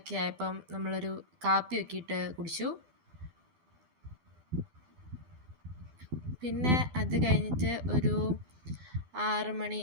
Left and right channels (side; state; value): left; late; 12 ms